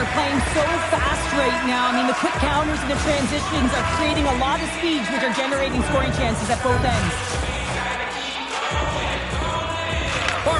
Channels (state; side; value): identical; both; correlation 1.00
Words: playing so fast right now. I mean, the quick counters and the transitions are creating a lot of speeds, which are generating scoring chances at both ends.